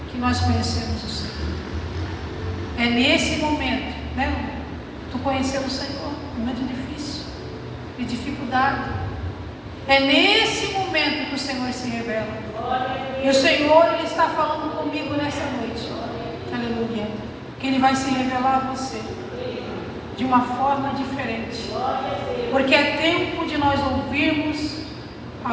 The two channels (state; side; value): identical; both; correlation 1.00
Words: que nós conhecemos o Senhor. É nesse momento, né? Tu conheceu o Senhor, momento difícil, de dificuldade. É nesse momento que o Senhor se revela. E o Senhor Ele está falando comigo nessa noite. Aleluia. Que Ele vai se revelar a você de uma forma diferente, porque é tempo de nós ouvirmos